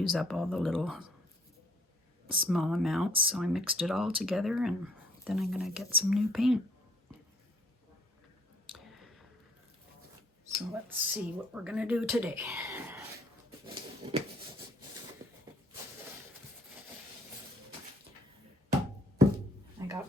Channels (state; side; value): normal; both; correlation 0.61